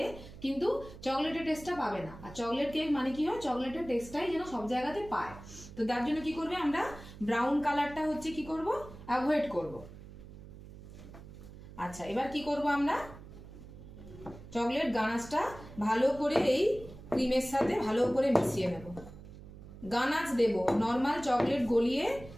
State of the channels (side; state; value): right; noise; hum, 16 dB below the sound